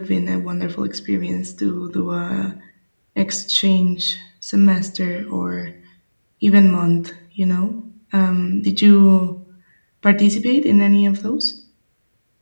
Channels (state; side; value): inverted; both; correlation -1.00